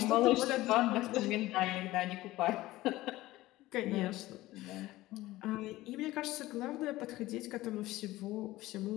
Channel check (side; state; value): right; quieter; 17.4 dB